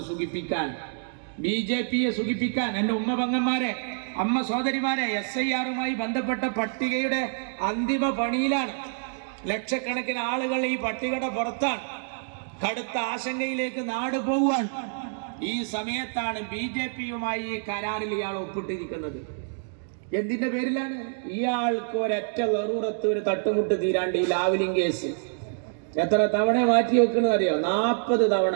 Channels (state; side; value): silent; left; digital silence